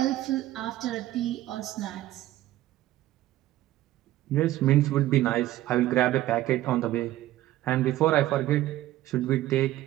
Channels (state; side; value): quieter; left; 15.0 dB